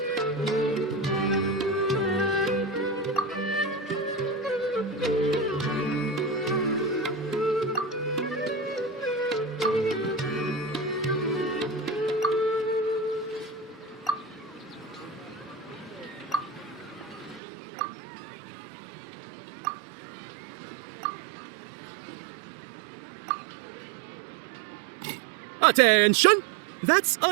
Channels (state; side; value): drops out; left; at 17.4 s